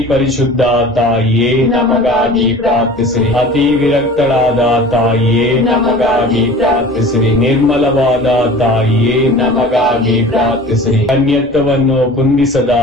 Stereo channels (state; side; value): normal; both; correlation 0.41